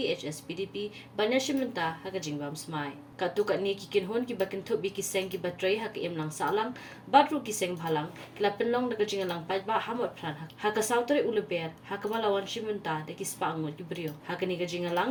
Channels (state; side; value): identical; both; correlation 1.00